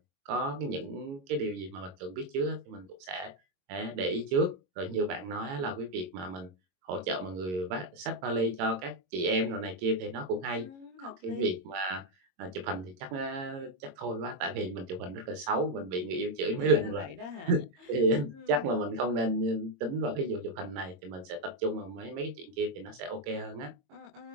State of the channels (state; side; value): late; left; 22 ms